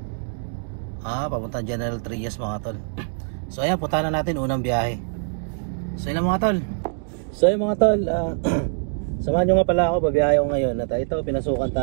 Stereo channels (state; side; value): silent; left; digital silence